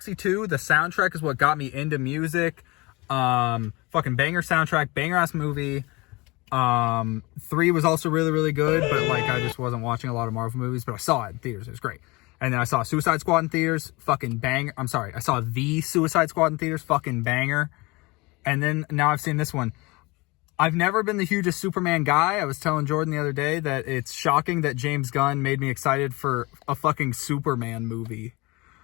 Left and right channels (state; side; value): quieter; right; 24.5 dB